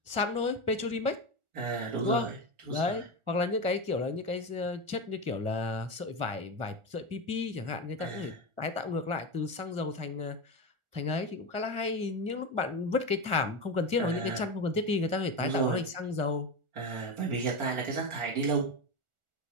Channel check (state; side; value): late; left; 1.4 ms